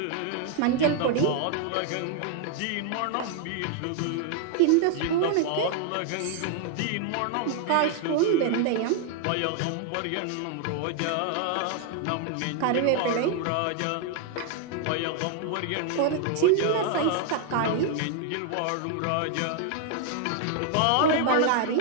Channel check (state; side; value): different; both; correlation 0.00